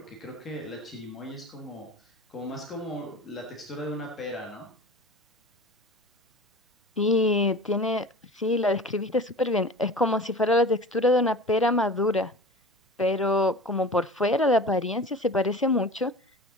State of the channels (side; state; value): both; normal; correlation 0.37